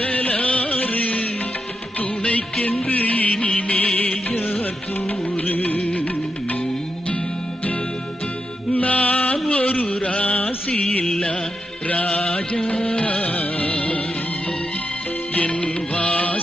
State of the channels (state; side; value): normal; both; correlation 0.86